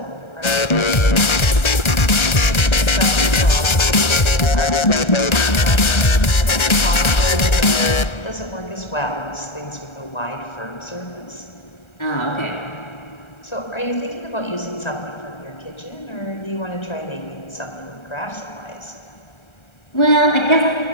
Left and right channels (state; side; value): late; right; 1.3 ms